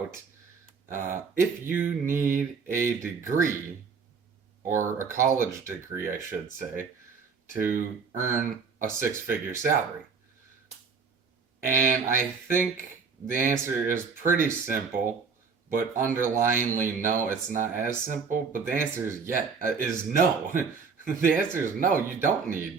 if you need a degree, or a college degree, I should say, to earn a six-figure salary. And I think the answer is pretty simple, but underlyingly, no, it's not as simple. But the answer is no. The answer is no. You don't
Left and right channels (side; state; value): left; quieter; 5.4 dB